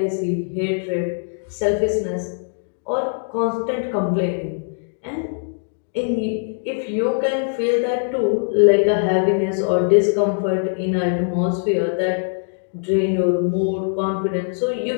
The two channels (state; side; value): silent; right; digital silence